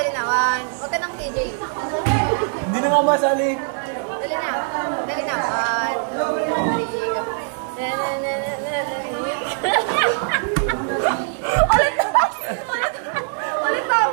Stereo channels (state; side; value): silent; left; 64 dB below the other